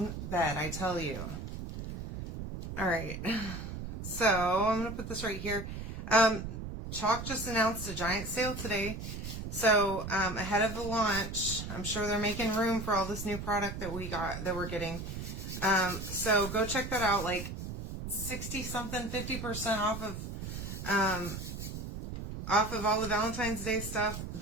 bed, I tell you. All right. So I'm going to put this right here. Chalk just announced a giant sale today. So ahead of the launch, I'm sure they're making room for all this new product that we're getting. So go check that out. Like 60 something, 50% off of all the Valentine's Day stuff.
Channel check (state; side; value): noise; right; rumble, 7 dB below the sound